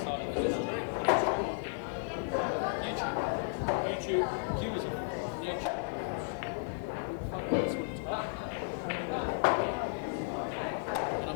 It's a factor. stream. It's a stream on YouTube. YouTube. Q is a YouTube. Well, fuck, that's what it's about. And I'm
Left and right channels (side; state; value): right; silent; digital silence